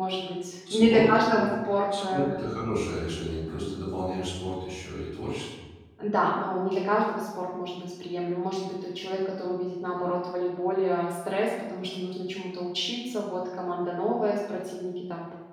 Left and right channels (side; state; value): both; identical; correlation 1.00